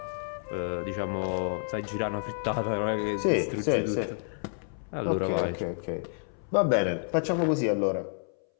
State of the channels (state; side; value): silent; right; 58 dB below the other